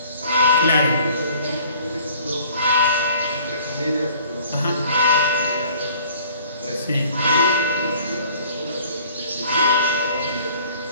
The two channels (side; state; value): both; inverted; correlation -0.53